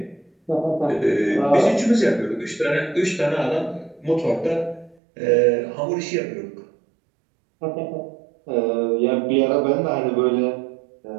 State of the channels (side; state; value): left; drops out; at 5.0 s